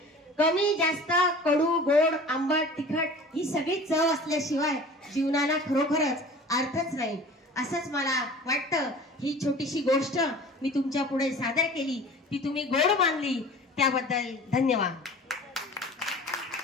कमी जास्त कडू गोड आंबट तिखट ही सगळी चव असल्याशिवाय जीवनाला खरोखरच अर्थच नाही, असंच मला वाटतं। ही छोटीशी गोष्ट मी तुमच्या पुढे सादर केली, ती तुम्ही गोड मानली त्याबद्दल धन्यवाद।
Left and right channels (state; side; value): normal; both; correlation 0.42